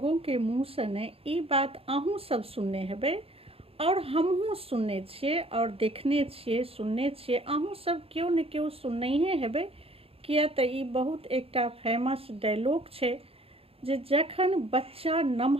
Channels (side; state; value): left; late; 0.28 ms